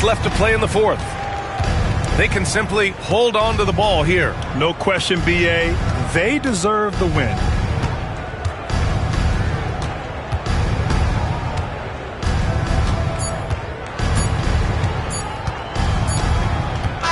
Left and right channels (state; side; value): identical; both; correlation 1.00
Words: left to play in the fourth. They can simply hold on to the ball here. No question, B.A. They deserve the win.